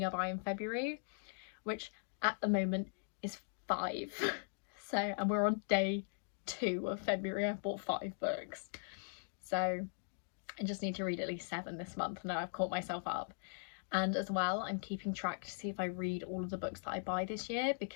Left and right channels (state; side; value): silent; right; digital silence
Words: I buy in February, which at the moment is 5. So, and we're on day 2 of February. I've bought 5 books, so I just need to read at least 7 this month. Now I've caught myself up. And as well, I'm keeping track to see if I read all of the books that I buy this year,